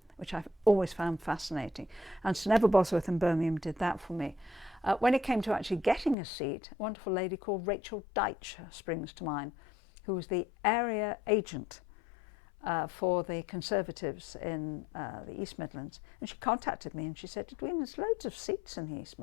which I've always found fascinating. And Sir Neville Bosworth in Birmingham did that for me. When it came to actually getting a seat, a wonderful lady called Rachel Deitch springs to mind, who was the area agent for the Conservatives in the East Midlands. And she contacted me and she said, "Edwina, there's loads of seats in the East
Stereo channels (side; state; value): right; drops out; at 6.2 s